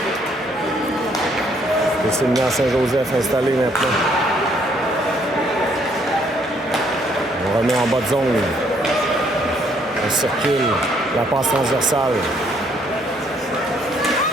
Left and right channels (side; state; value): both; normal; correlation 0.67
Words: C'est Sylvain Saint-Joseph installé maintenant. On remet en bas de zone. On circule. La passe transversale.